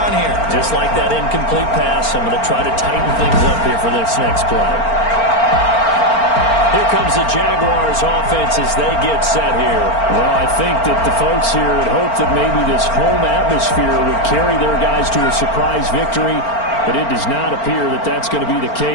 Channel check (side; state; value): right; late; 4.4 ms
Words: here? Just like that incomplete pass, I'm going to try to tighten things up here for this next play. Here comes the Jaguars offense as they get set here. Well, I think that the folks here had hoped that maybe this home atmosphere would carry their guys to a surprise victory, but it does not appear that that's going to be the